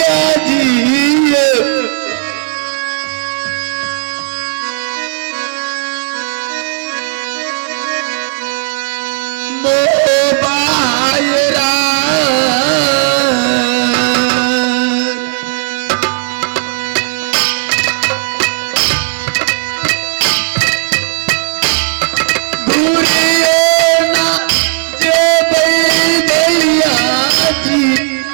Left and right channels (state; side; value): silent; left; digital silence